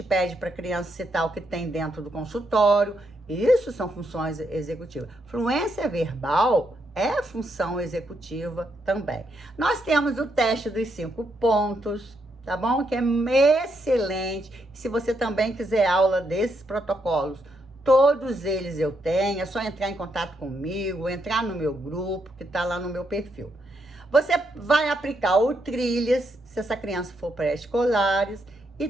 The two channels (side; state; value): both; normal; correlation 0.79